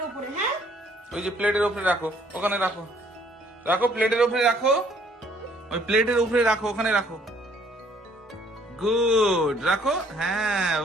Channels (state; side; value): normal; both; correlation 0.62